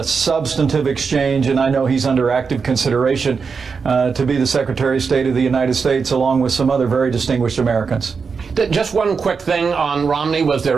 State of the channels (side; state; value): left; quieter; 5.4 dB